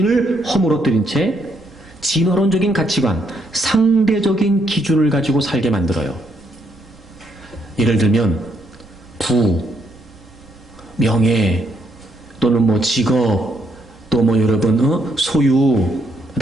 허물어뜨린 채 진화론적인 가치관, 상대적인 기준을 가지고 살게 만들어요. 예를 들면 부, 명예, 또는 뭐 직업, 또 뭐 여러분 소유,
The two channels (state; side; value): noise; right; rumble, 25 dB below the sound